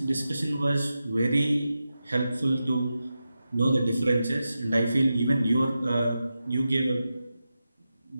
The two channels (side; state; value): both; inverted; correlation -0.91